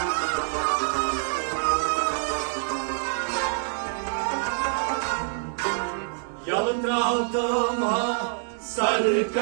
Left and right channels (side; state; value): left; silent; digital silence